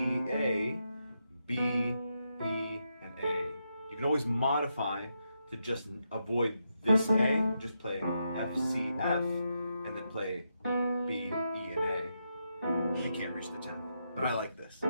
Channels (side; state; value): both; inverted; correlation -0.83